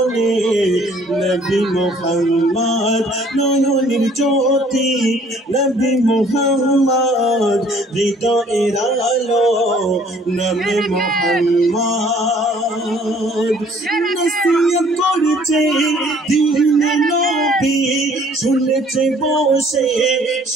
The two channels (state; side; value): normal; both; correlation 0.58